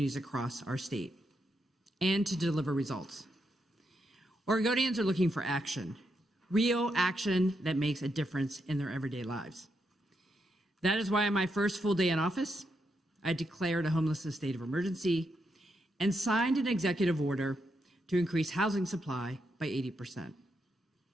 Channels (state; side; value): normal; both; correlation 0.82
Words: across our state and to deliver results. Oregonians are looking for action, real action that makes a difference in their everyday lives. That is why on my first full day in office, I declared a homelessness state of emergency and signed an executive order to increase housing supply by 80%.